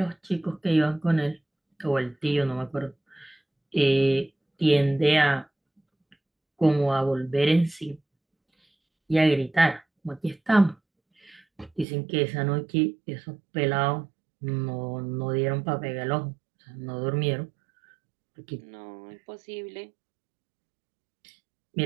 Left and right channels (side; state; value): left; drops out; at 11.9 s